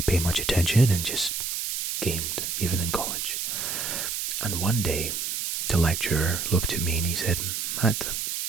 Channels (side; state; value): right; noise; hiss, 2 dB below the sound